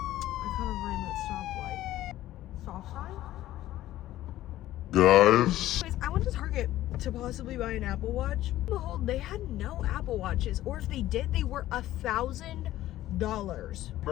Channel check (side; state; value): right; quieter; 14.5 dB